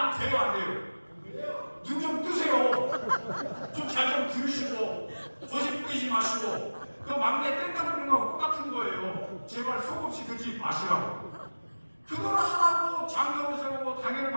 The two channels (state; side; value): inverted; both; correlation -1.00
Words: 돼요, 안 돼요? 눈 좀 뜨세요. 좀 잘 좀 들으시고 거짓 뿌리지 마시고 그 막내 땡깡 부리는 거하고 똑같은 거예요. 제발 속없이 그러지 마시라고. 그걸 하라고 장로를 세우고 당회를